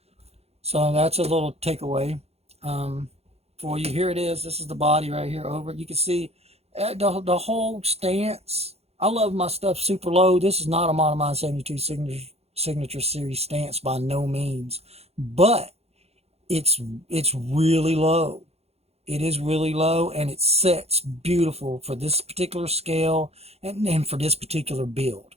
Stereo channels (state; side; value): late; left; 0.30 ms